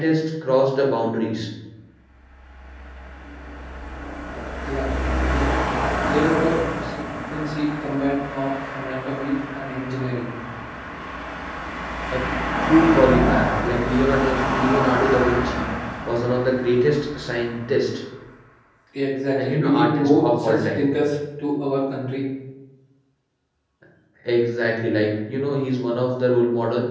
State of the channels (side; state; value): both; identical; correlation 1.00